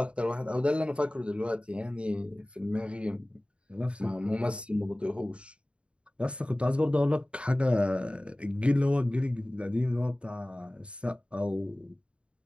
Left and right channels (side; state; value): left; late; 0.058 ms